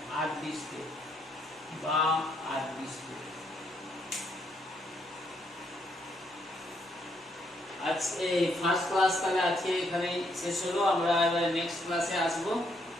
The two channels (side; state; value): both; normal; correlation 0.73